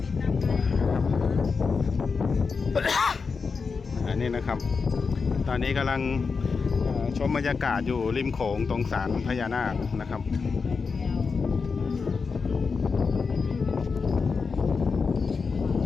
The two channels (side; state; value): right; quieter; 5.0 dB